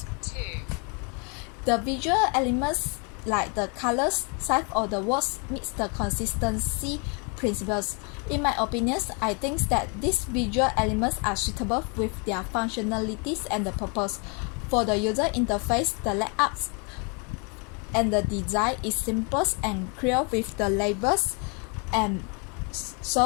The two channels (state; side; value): quieter; right; 34.9 dB